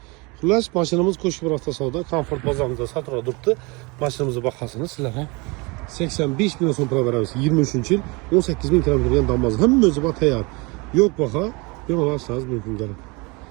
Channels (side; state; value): left; quieter; 27.2 dB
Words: Xullas, mashinamiz Qo'shko'pir avtosavdo Comfort bozorida sotilib turibdi. Mashinamizning bahosini sizlarga 85 milyon so'm pul beramiz. 23-yil 18 ming kilometr yurgan damoz. Hamma o'zi bor tayyor. Yo'q baho, bemalol olsangiz mumkin bo'ladi.